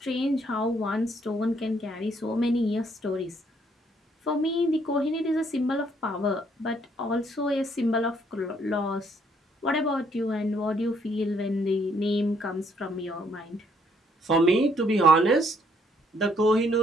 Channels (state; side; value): normal; both; correlation 0.68